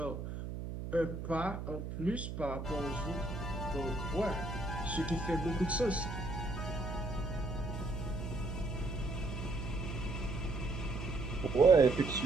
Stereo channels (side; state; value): right; noise; hum, 6 dB below the sound